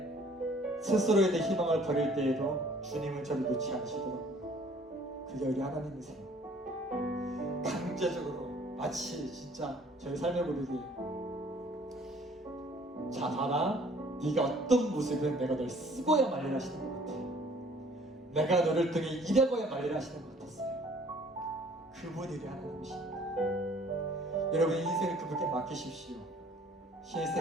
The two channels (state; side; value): normal; both; correlation 0.56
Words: 스스로에 대해 희망을 버릴 때에도 주님은 저를 놓지 않으시더라고요. 그게 우리 하나님이세요. 강제적으로 마치 진짜 저희 삶의 고백이 자 봐라, 네가 어떤 모습은 내가 널 쓰고야 말리라 하시는 것 같아. 내가 너를 통해 일하고야 말리라 하시는 것 같았어요. 그분이 우리 하나님이십니다. 여러분 인생을 그분께 맡기십시오.